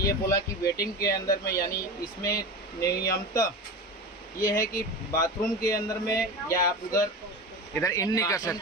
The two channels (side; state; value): both; normal; correlation 0.27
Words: बोला कि वेटिंग के अंदर में यानी इसमें नियमतः ये है कि बाथरूम के अंदर में या आप इधर इन नहीं कर